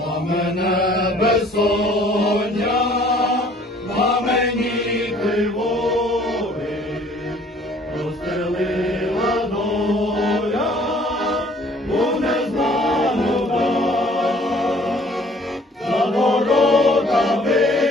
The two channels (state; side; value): normal; both; correlation 0.56